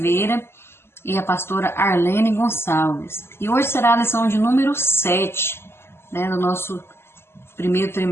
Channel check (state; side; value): late; right; 0.12 ms